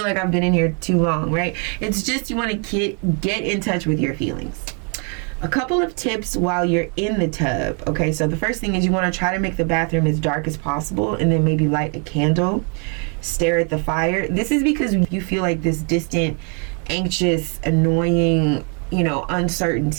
like I've been in here too long, right? It's just you want to get in touch with your feelings. A couple of tips while you're in the tub. Okay, so the first thing is you want to try to make the bathroom as dark as possible, and then maybe light a candle, stare at the fire. This is because you feel like this distant, anxious, annoying,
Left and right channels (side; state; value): left; quieter; 38.3 dB